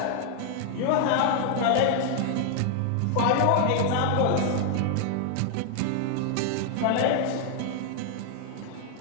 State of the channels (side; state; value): both; different; correlation 0.00